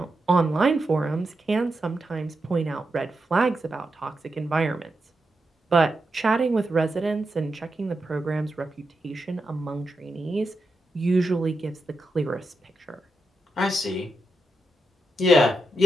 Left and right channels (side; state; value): both; normal; correlation 0.87